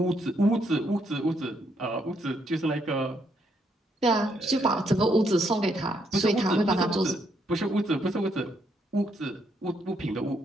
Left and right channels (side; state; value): both; normal; correlation 0.75